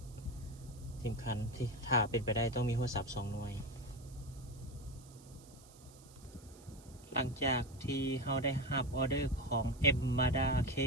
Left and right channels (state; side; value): noise; right; hiss, 23 dB below the sound